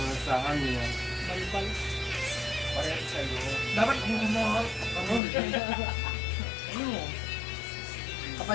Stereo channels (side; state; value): right; drops out; at 5.2 s